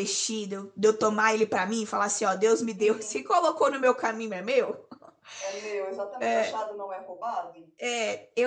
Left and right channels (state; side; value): identical; both; correlation 1.00